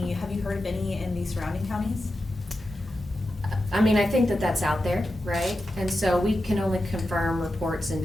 Have you heard of any in the surrounding counties? I mean, I think that that's out there, right? And so we can only confirm reports in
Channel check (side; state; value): both; normal; correlation 0.90